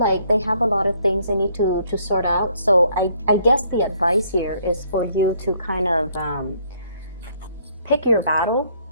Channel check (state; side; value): inverted; both; correlation -0.65